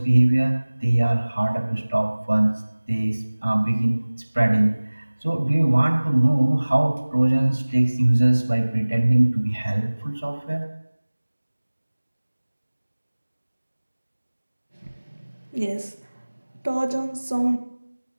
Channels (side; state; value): both; inverted; correlation -1.00